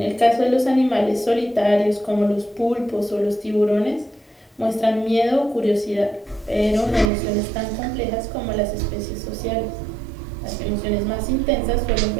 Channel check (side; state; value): left; drops out; at 7.1 s